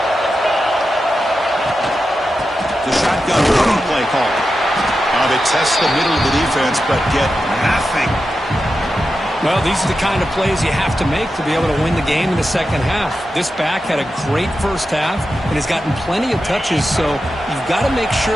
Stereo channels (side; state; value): both; normal; correlation 0.90